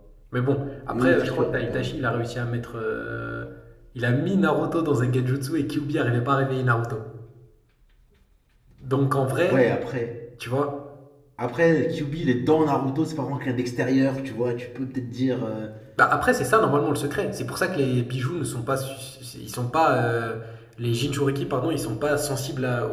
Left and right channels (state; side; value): identical; both; correlation 1.00